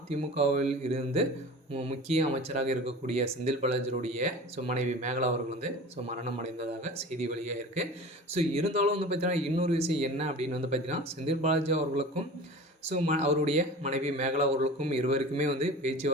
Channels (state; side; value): normal; both; correlation 0.37